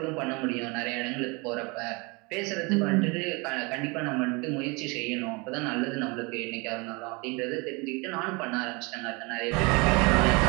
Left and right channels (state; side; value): quieter; left; 28.0 dB